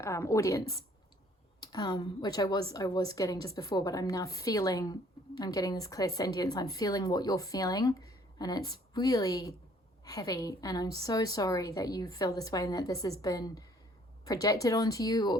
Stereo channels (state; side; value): normal; both; correlation 0.60